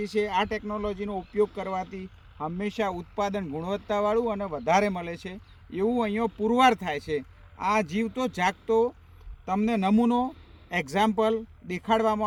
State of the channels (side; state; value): both; identical; correlation 1.00